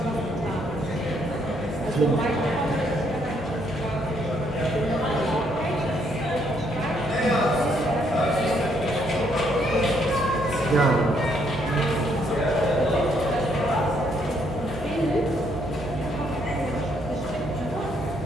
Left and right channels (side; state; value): both; normal; correlation 0.71